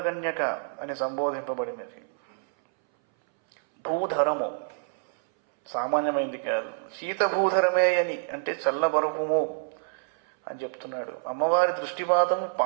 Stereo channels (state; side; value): silent; left; 60 dB below the other